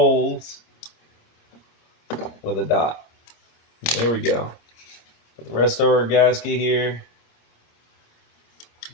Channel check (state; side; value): late; right; 26 ms